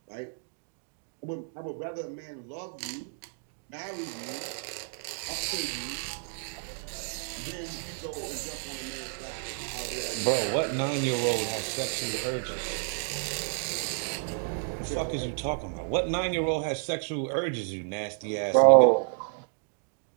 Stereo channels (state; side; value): silent; left; digital silence